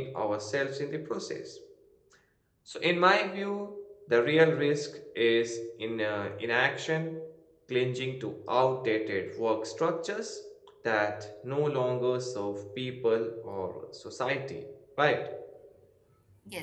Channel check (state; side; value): identical; both; correlation 1.00